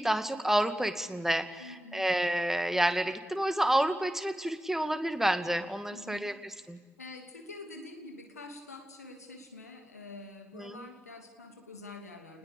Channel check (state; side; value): normal; both; correlation 0.93